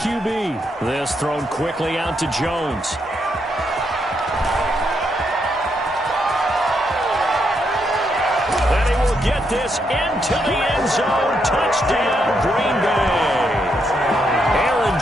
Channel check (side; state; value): both; normal; correlation 0.78